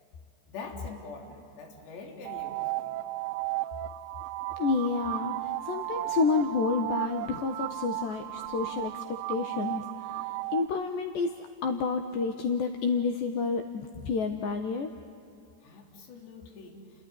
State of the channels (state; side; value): late; right; 14 ms